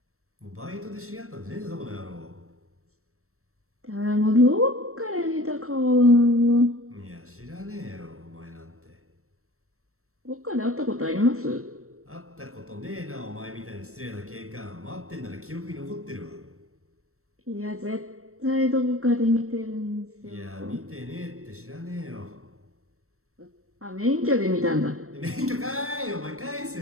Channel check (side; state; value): left; late; 0.63 ms